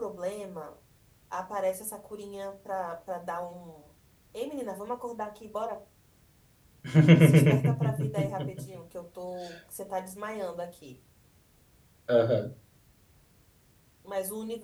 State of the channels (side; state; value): both; identical; correlation 1.00